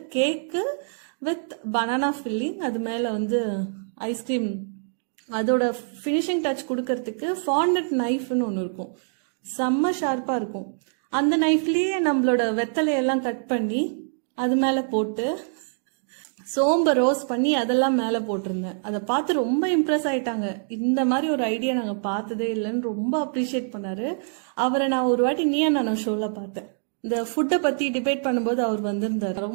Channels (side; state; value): left; silent; digital silence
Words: கேக்கு வித் பனானா ஃபில்லிங், அது மேல வந்து ஐஸ்கிரீம், அதோட ஃபினிஷிங் டச் கொடுக்கறதுக்கு ஃபாண்டட் நைஃப்னு ஒன்று இருக்கும், செம்ம ஷார்ப்பா இருக்கும். அந்த நைஃப்லயே நம்மளோட வெத்தலையெல்லாம் கட் பண்ணி அது மேல போட்டு சோம்ப ரோஸ்ட் பண்ணி அதெல்லாம் மேல போட்டிருந்தேன். அதை பார்த்து ரொம்ப இம்ப்ரெஸ் ஆயிட்டாங்க. இந்த மாதிரி ஒரு ஐடியா நாங்க பார்த்ததே இல்லைன்னு ரொம்ப அப்ரிஷியேட் பண்ணாரு. அவரை நான் ஒரு வாட்டி நீயா நான் ஷோல பார்த்தேன். இந்த ஃபுட்டை பத்தி டிபேட் பண்ணும்போது அவர் வந்திருந்தார்.